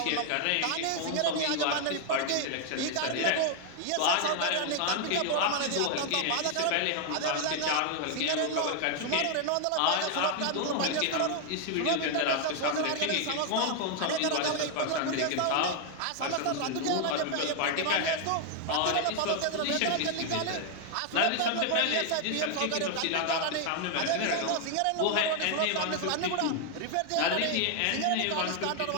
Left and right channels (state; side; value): different; both; correlation 0.00